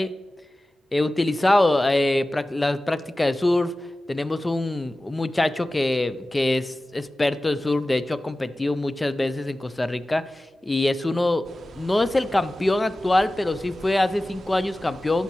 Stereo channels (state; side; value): normal; both; correlation 0.96